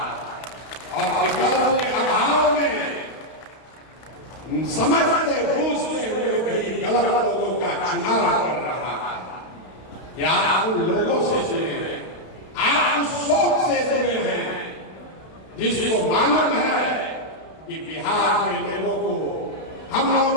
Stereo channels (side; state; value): right; late; 32 ms